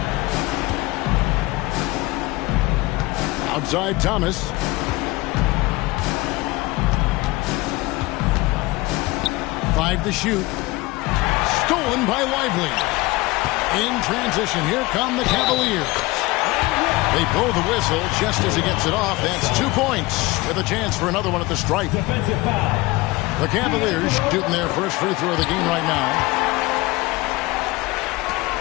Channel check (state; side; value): quieter; right; 21.3 dB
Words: Outside Thomas. Five to shoot. Stolen by Lively. In transition, here come the Cavaliers. They blow the whistle just as he gets it off. That's 2 points with a chance for another one at the stripe. The Cavaliers shooting their first free throw of the game right now.